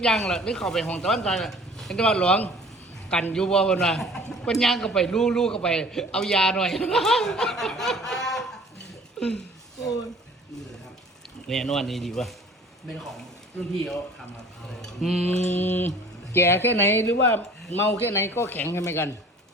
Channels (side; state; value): both; normal; correlation 0.48